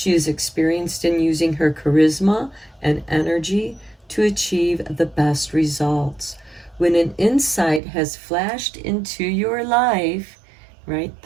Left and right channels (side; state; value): left; drops out; at 7.8 s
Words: is experienced in using her charisma and energy to achieve the best results. When an insight has flashed into your life, right